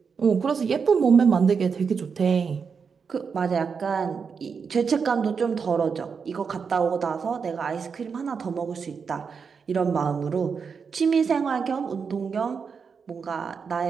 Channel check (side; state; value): left; quieter; 5.9 dB